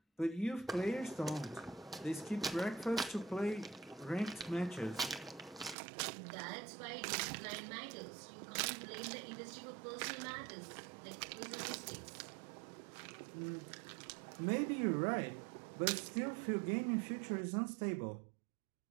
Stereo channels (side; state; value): left; drops out; at 5.8 s